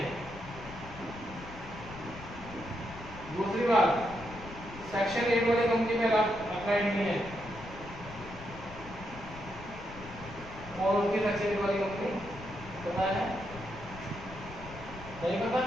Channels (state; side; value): noise; left; rumble, 14 dB below the sound